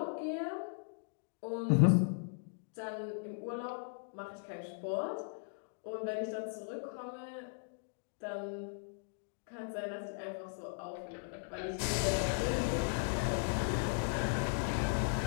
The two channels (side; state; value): right; silent; digital silence